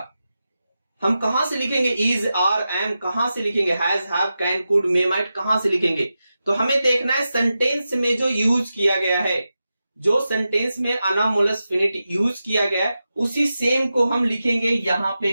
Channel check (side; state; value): both; inverted; correlation -0.91